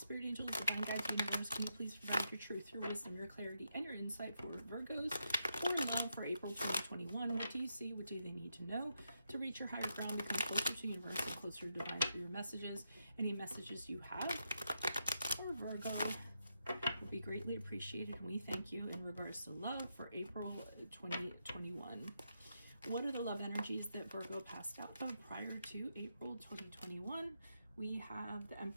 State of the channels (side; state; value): both; inverted; correlation -0.82